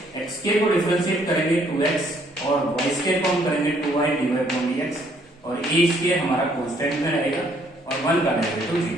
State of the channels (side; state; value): both; normal; correlation 0.66